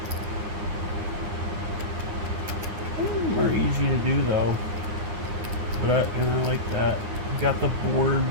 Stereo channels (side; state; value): left; late; 9.6 ms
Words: Some of them are easy to do though, but I like that. You got the board,